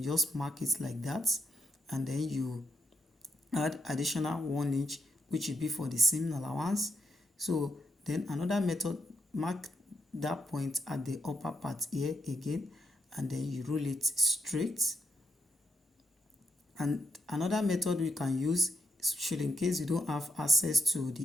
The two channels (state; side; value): normal; both; correlation 0.79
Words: just mark it like that, and then you add additional 1 inch, which will be for the seam allowance. So then another method, mark that point at the upper part here again, and then you roll it straight. And another method we can use, should in case you don't have access to